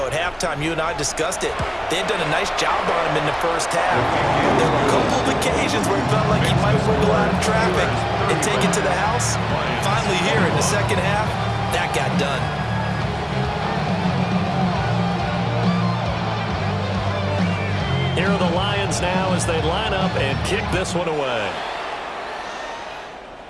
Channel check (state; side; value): identical; both; correlation 1.00